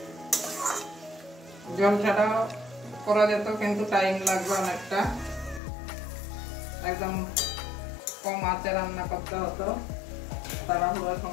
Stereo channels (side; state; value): right; drops out; at 5.6 s